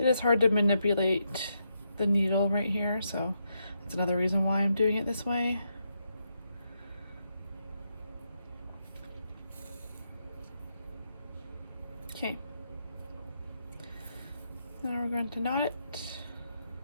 is hard to manipulate the needle right here, so that's another reason why I'm doing it this way. Okay. Now we're going to knot it.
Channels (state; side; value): inverted; both; correlation -0.81